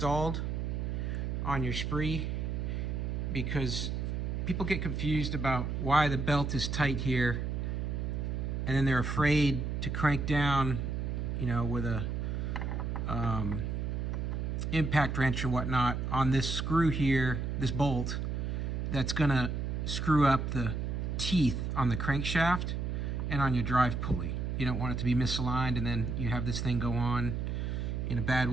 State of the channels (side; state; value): right; noise; hum, 2 dB below the sound